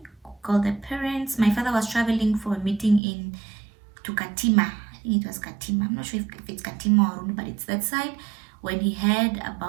called the parents. My father was traveling for a meeting to Katima. I think it was Katima. I'm not sure if it's Katima or Runu, but it's that side. When he heard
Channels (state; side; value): drops out; left; at 3.0 s